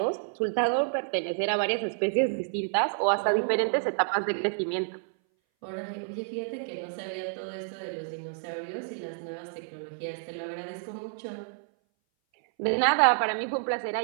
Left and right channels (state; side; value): silent; left; 58 dB below the other